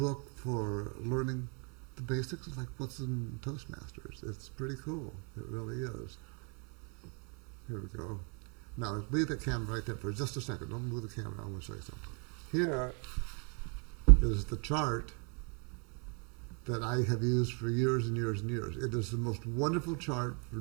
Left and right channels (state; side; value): quieter; left; 37.4 dB